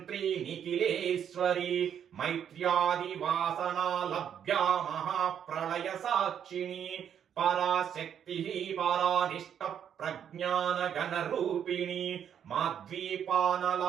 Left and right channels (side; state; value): left; quieter; 8.8 dB